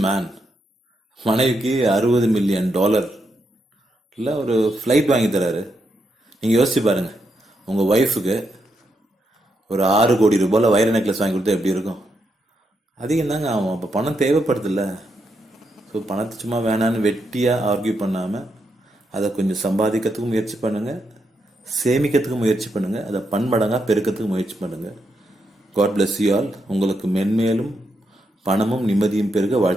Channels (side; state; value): both; normal; correlation 0.81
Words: மேன். மனைவிக்கு $60 மில்லியன் இல்லை ஒரு ஃப்ளைட் வாங்கி தராரு. நீங்கள் யோசிச்சு பாருங்கள், உங்கள் ஒய்ஃபுக்கு ஒரு 6 கோடி ரூபாயில் வைர நெக்லஸ் வாங்கி கொடுத்தா எப்படி இருக்கும்? அதிகம் தாங்க ஆகும். அப்போ பணம் தேவைப்படுதில்ல. ஸோ பணத்தை சும்மா வேணான்னு வெட்டியாக ஆர்கியூ பண்ணாமல் அதை கொஞ்சம் சம்பாதிக்கிறதுக்கும் முயற்சி பண்ணுங்கள், சேமிக்கிறதுக்கும் முயற்சி பண்ணுங்கள், அதை பன்மடங்காக பெருக்கிறதுக்கு முயற்சி பண்ணுங்கள். God bless you all. உங்களுக்கு மென்மேலும் பணமும் நிம்மதியும் பெருக